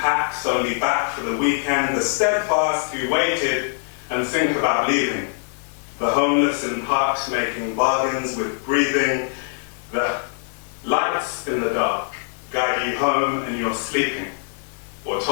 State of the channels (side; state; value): right; silent; digital silence